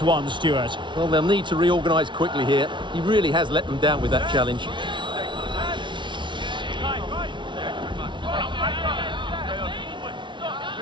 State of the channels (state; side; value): late; left; 0.24 ms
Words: one, Stuart. Well, they'll need to reorganise quickly here. He really has let them down with that challenge.